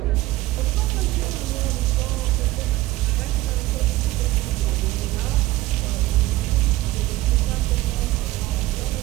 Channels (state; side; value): quieter; left; 17.4 dB